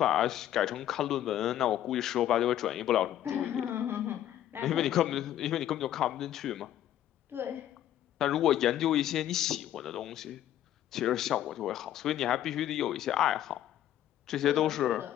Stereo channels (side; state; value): right; quieter; 11.9 dB